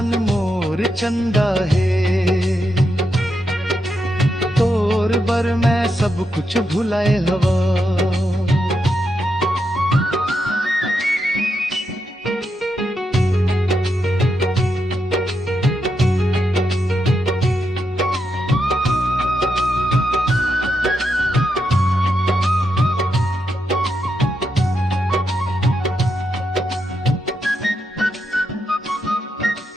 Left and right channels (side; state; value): both; normal; correlation 0.83